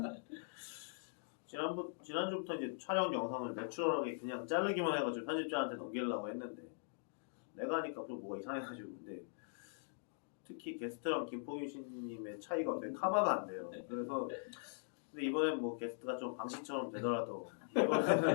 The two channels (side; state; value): right; silent; digital silence